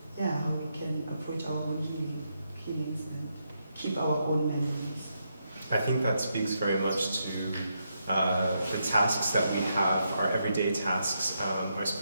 can approach our own healings and keep our own memories. I think that speaks very much to the tasks that we have, our everyday tasks, our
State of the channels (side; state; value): both; inverted; correlation -0.81